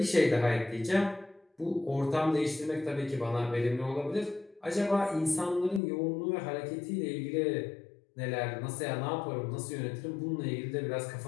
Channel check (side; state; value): right; drops out; at 5.8 s